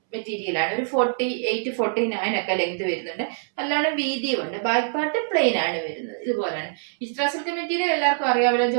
മെറ്റീരിയൽ ആണ്. ഒരു 48-49 ഒക്കെ ലെങ്ത് വരുന്നുണ്ട്. നല്ലോണം വീതിയും ഉണ്ട്. ബാക്ക് പാർട്ട് പ്ലെയിൻ ആണ് വരുന്നത്. ഇതുപോലെയാണ്. വിചിത്ര സിൽക്ക് മെറ്റീരിയൽ എല്ലാവർക്കും അറിയാമല്ലോ.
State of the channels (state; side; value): silent; left; 62 dB below the other